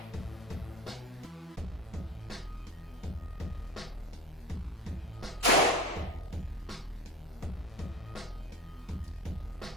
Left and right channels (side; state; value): both; normal; correlation 0.35